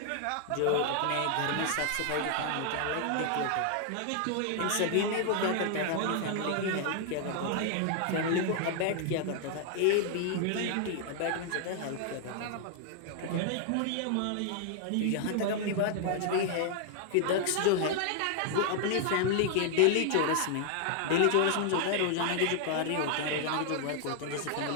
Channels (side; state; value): both; different; correlation 0.00